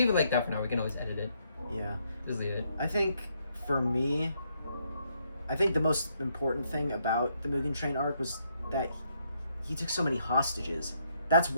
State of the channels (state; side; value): inverted; both; correlation -0.74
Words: it like that for now. We can always edit it. Yeah. Just leave it. I think, for me, the most important thing about the Mugen Train arc was that he took so many hostages. That's